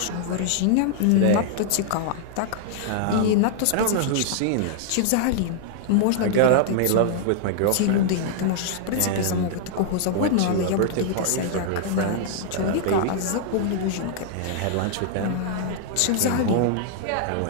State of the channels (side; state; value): both; different; correlation -0.01